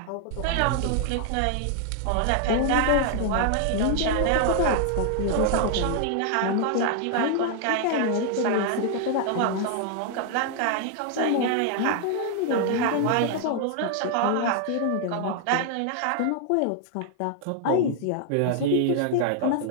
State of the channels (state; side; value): different; both; correlation 0.00